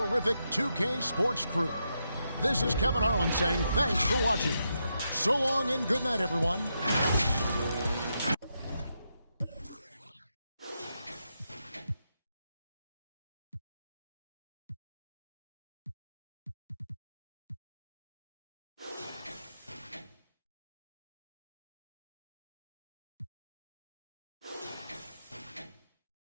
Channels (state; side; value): inverted; both; correlation -0.84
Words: 2K Sports crew, this is Kevin Harlan saying thanks for watching. So long and good night, everyone.